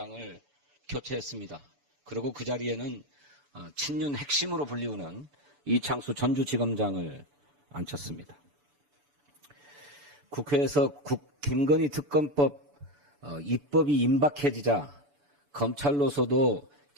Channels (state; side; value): late; left; 6.9 ms